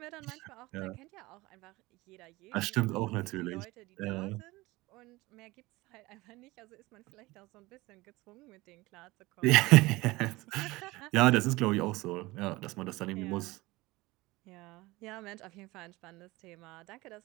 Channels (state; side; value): quieter; left; 20.9 dB